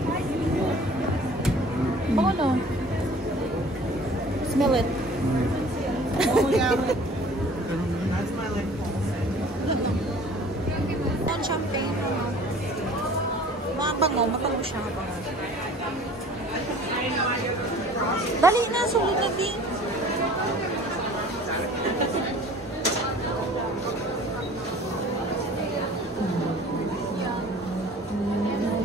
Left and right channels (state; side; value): normal; both; correlation 0.48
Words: Bango no? Smell it. Oh, yeah. Ang champagne. Mga bango. Mabango siya. Mabango. Dali na. Sulit na din.